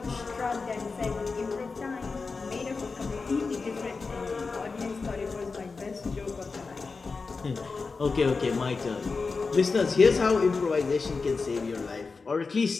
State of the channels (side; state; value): right; quieter; 4.4 dB